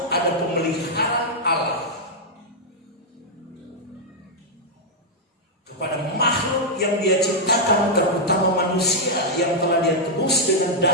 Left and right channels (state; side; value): normal; both; correlation -0.05